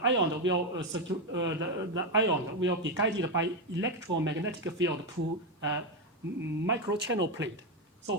ion will be guided by electromagnetic field to microchannel plate.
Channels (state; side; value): normal; both; correlation 0.08